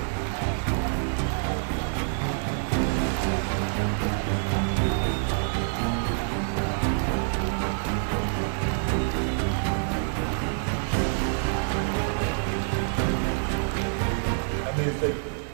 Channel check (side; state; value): left; silent; digital silence